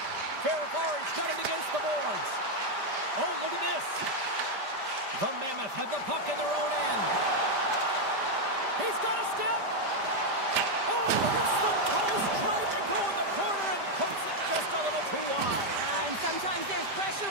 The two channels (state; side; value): late; left; 5.1 ms